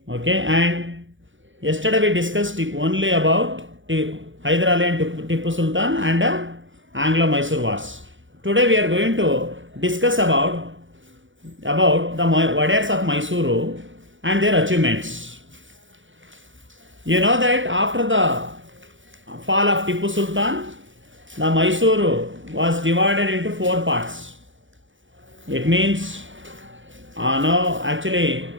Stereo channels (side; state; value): left; late; 0.56 ms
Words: Okay, and yesterday we discussed only about Hyder Ali and Tipu Sultan and Anglo-Mysore Wars. Today we are going to discuss about the Wadayars of Mysuru and their achievements. You know that after the fall of Tipu Sultan, the Mysuru was divided into 4 parts. It means, once